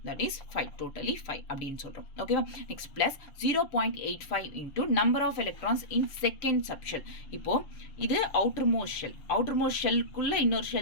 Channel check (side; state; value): right; late; 7.0 ms